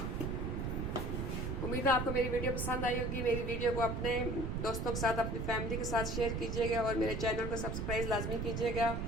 उम्मीद है आपको मेरी वीडियो पसंद आई होगी। मेरी वीडियो को अपने दोस्तों के साथ, अपनी फैमिली के साथ शेयर कीजिएगा और मेरे चैनल को सब्सक्राइब लाजमी कीजिएगा।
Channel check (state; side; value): noise; right; rumble, 2 dB below the sound